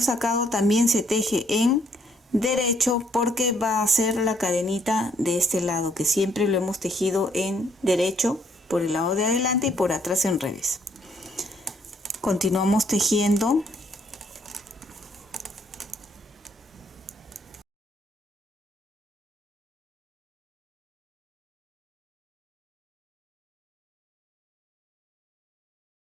sacado también se teje en derecho porque va a ser la cadenita de este lado, que siempre lo hemos tejido en derecho por el lado de adelante y por atrás en revés. Continuamos tejiendo.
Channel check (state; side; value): normal; both; correlation 0.68